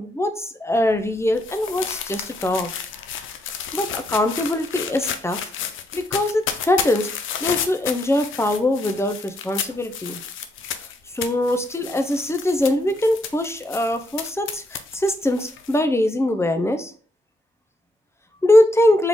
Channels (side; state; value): both; normal; correlation 0.77